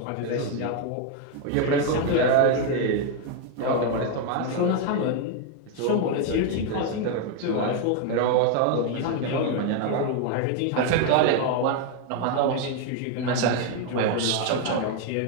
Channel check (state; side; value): different; both; correlation 0.01